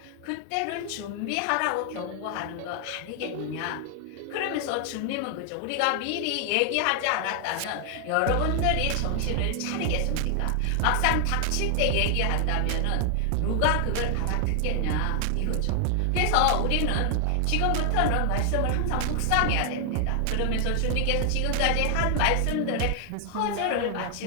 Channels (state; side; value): different; both; correlation 0.00